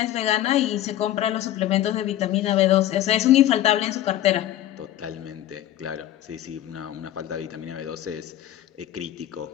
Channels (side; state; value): right; quieter; 13.0 dB